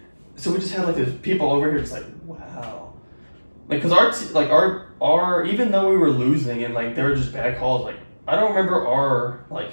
So we just had like these people over here, just like, wow, like because our even though we were losing and like they were just bad calls, like I don't remember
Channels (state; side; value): inverted; both; correlation -1.00